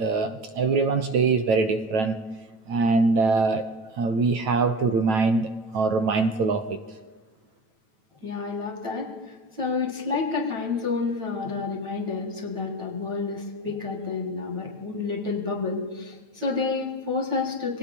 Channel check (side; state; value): left; late; 9.1 ms